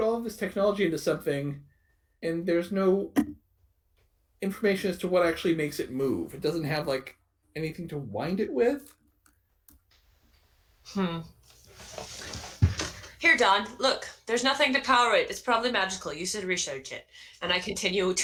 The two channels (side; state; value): both; identical; correlation 1.00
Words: all of this technology into something, and there's no information as to what actually makes it move. It doesn't have anything to wind it with. Here, Don, look. There's nothing to power it. It's probably magical. You should research it. And I continue